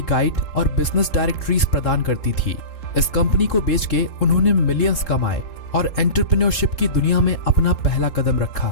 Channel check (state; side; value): late; right; 3.7 ms